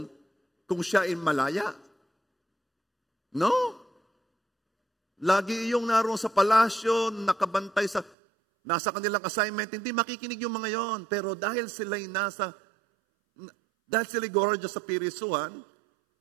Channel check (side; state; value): left; drops out; at 8.2 s